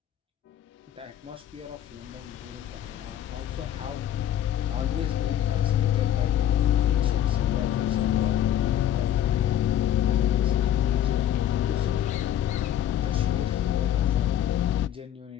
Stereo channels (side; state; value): right; quieter; 11.1 dB